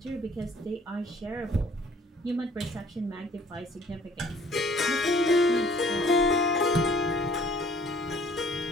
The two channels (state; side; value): normal; both; correlation 0.56